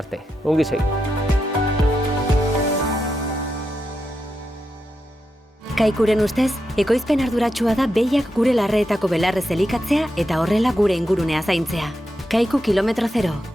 arte. Ongi segi. Kaikuren ustez, ekoizpen arduratsua da behiak gure larreetako belarrez elikatzea eta horrela gure ingurunea zaintzea. Kaiku kilometro zero,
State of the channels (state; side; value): normal; both; correlation 0.86